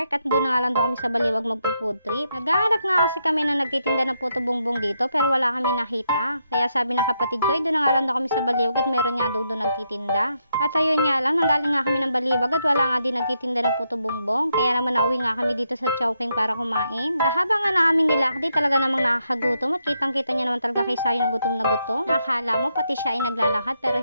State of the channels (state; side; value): inverted; both; correlation -0.80